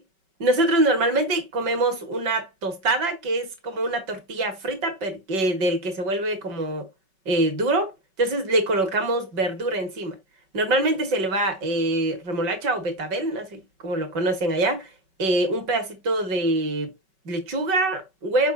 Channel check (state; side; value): late; left; 5.3 ms